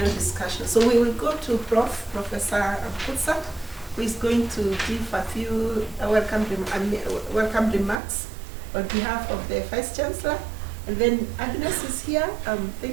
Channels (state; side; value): drops out; left; at 8.0 s